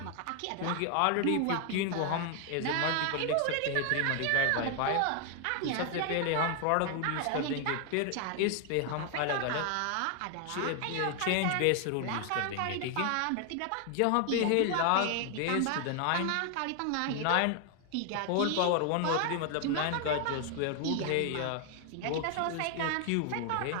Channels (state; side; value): different; both; correlation 0.00